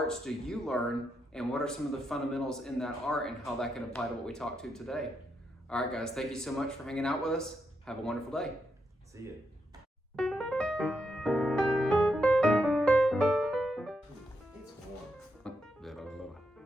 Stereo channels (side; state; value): both; normal; correlation 0.82